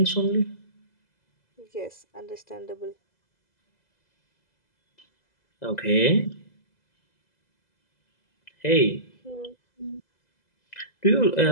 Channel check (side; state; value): right; late; 2.0 ms